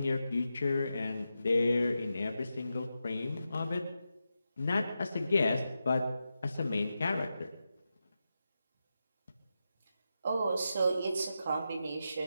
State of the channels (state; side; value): inverted; both; correlation -0.89